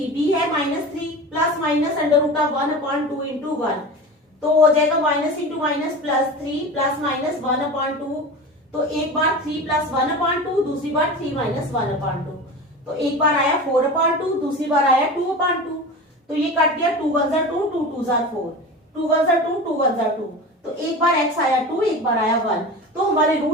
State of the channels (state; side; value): normal; both; correlation 0.31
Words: है -3 plus minus under root of 1 upon 2 into 1, तो हो जाएगा minus into minus plus 3 plus minus 1 upon 2, तो एक बार 3 प्लस 1 अपॉन 2, दूसरी बार 3 माइनस 1 अपॉन 2, तो एक बार आया 4 अपॉन 2, दूसरी बार आया 2 अपॉन 2, तो ये कट गया 2 1 2, 2 2 4, 2 1 2, 2 1 2, तो एक बार x आया 2, एक बार आया 1, तो हमारे